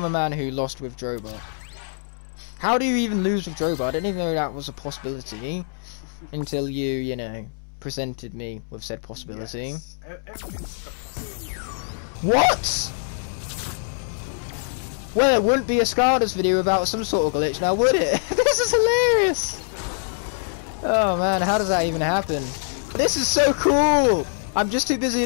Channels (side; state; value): right; silent; 63 dB below the other